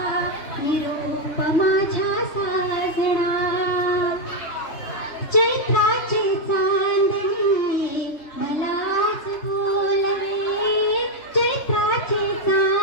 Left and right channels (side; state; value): right; late; 3.2 ms